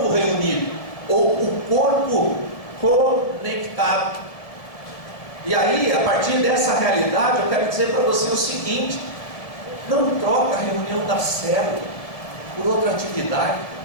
reunido, ou o corpo conectado. E aí, a partir dessa realidade, eu quero dizer para você o seguinte: não troca a reunião da célula por outra atividade,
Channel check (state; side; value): late; right; 1.8 ms